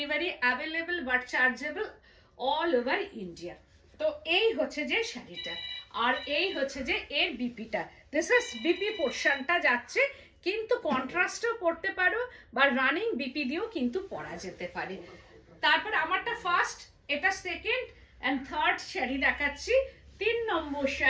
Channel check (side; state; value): both; identical; correlation 1.00